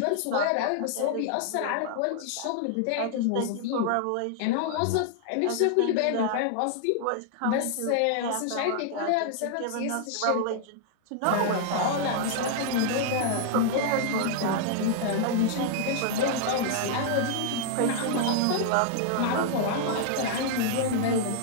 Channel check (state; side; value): different; both; correlation -0.01